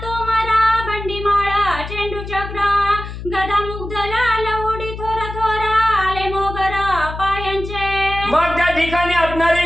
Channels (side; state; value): left; noise; hum, 9 dB below the sound